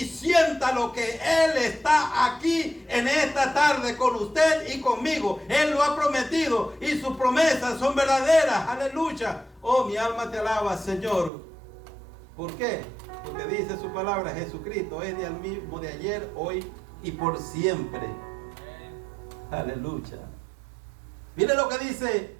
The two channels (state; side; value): drops out; left; at 11.3 s